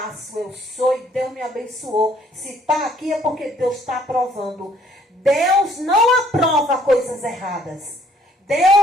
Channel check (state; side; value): normal; both; correlation 0.63